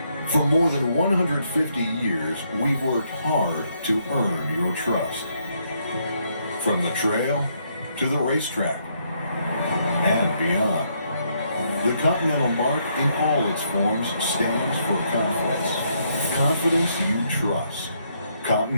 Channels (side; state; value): both; inverted; correlation -0.74